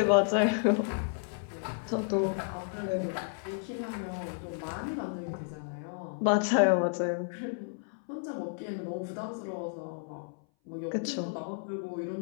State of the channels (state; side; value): silent; right; 56 dB below the other